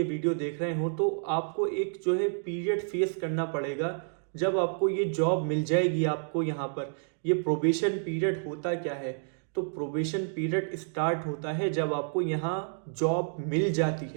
वीडियो देख रहे हो, तो आपको एक जो है पीरियड फेस करना पड़ेगा जब आपको ये जॉब मिल जाएगी। आपको यहाँ पर ये प्रोबेशन पीरियड होता क्या है? तो प्रोबेशन पीरियड स्टार्ट होता है जब आपको यहाँ जॉब मिल जाती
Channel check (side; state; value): left; silent; digital silence